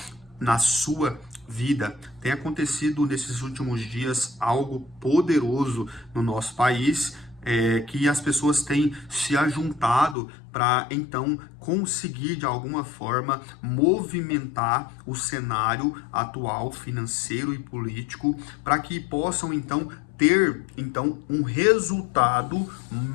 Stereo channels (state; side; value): drops out; right; at 10.2 s